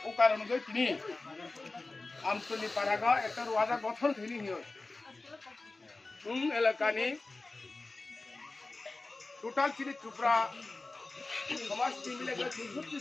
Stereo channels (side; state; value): right; quieter; 3.3 dB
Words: ও কারণ গই তিনি আমতলি পারাগা একটা wadah গঠন তিনি হিও। এলাকানি টোটাল চিনি চুপড়া সমাজ মিলে